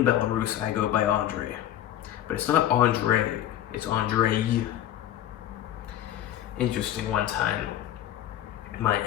Belarus I go by Andrey. But it's not Andrey, it's Andrey. Interesting, one time my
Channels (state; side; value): quieter; right; 11.9 dB